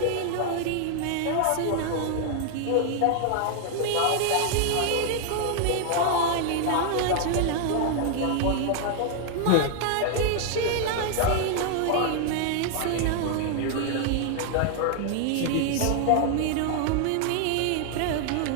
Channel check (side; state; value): both; different; correlation 0.00